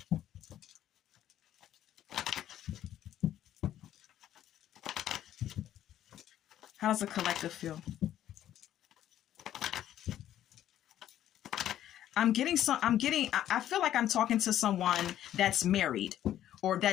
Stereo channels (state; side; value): quieter; right; 11.8 dB